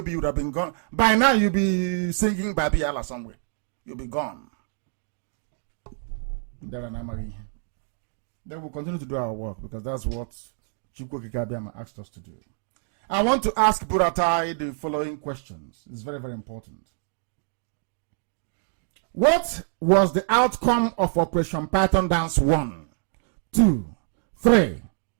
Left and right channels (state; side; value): silent; left; 61 dB below the other